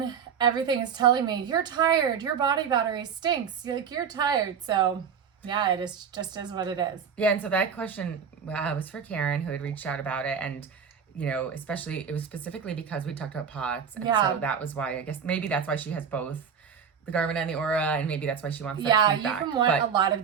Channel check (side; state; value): left; quieter; 7.0 dB